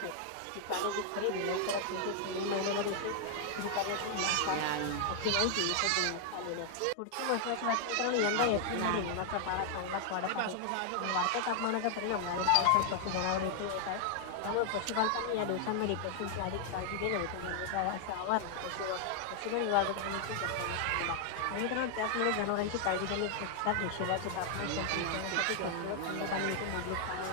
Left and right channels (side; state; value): both; different; correlation 0.00